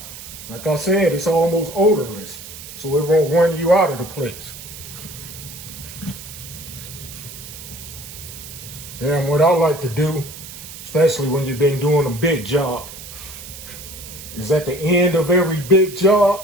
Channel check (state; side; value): noise; right; hiss, 13 dB below the sound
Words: Like I said, it's almost odorless, so it won't run you out of the place. Yeah, and what I like to do, especially when you've been doing a big job, is at the end of every big